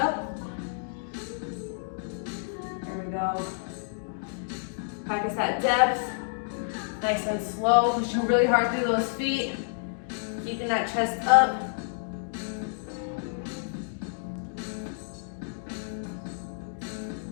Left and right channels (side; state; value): right; silent; digital silence